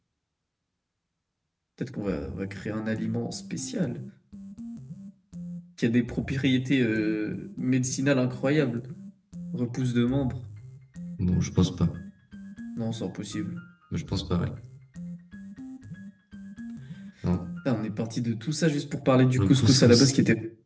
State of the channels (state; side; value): identical; both; correlation 1.00